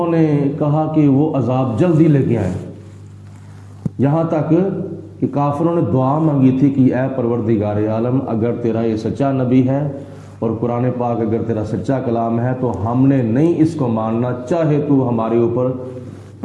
نے کہا کہ وہ عذاب جلدی لے کے آئیں، یہاں تک کہ کافروں نے دعا مانگی تھی کہ اے پروردگار عالم، اگر تیرا یہ سچا نبی ہے اور قرآن پاک اگر تیرا سچا کلام ہے تو ہم نے نہیں اس کو ماننا، چاہے تو ہمارے اوپر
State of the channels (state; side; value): identical; both; correlation 1.00